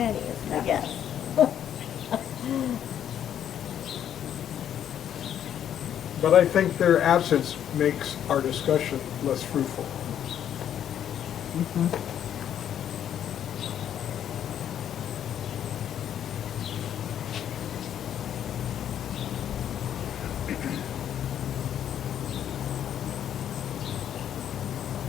is my guess. But I think their absence makes our discussion less fruitful. Mm-hmm.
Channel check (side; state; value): right; quieter; 9.9 dB